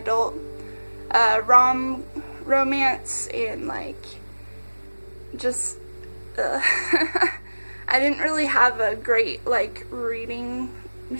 romance and like just I didn't really have a great like reading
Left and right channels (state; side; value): inverted; both; correlation -1.00